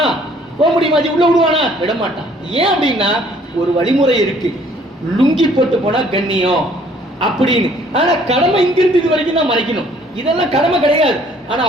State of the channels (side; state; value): both; normal; correlation 0.59